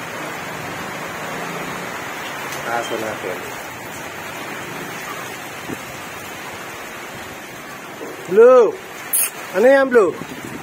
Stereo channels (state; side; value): identical; both; correlation 1.00